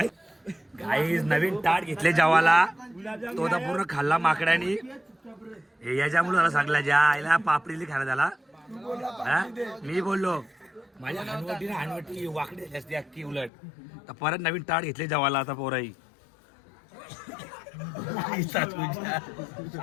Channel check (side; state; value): right; drops out; at 13.5 s